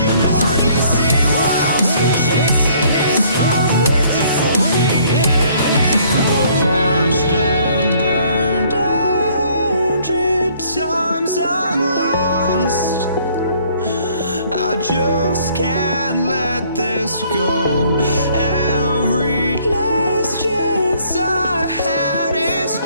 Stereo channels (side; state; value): both; inverted; correlation -0.61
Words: hardly see why I'm still chasing. It's not worth it for me anymore. Crashed and burned 100 times, I'm lost. I just can't let this go. Every last chance I had is